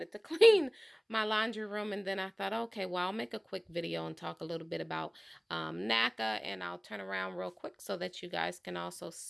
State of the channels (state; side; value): identical; both; correlation 1.00